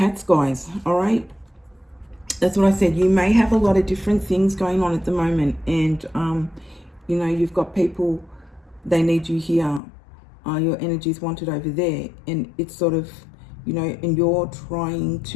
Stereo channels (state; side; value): drops out; right; at 9.8 s